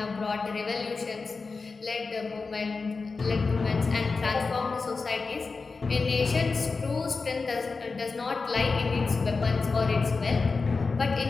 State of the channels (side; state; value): right; quieter; 4.3 dB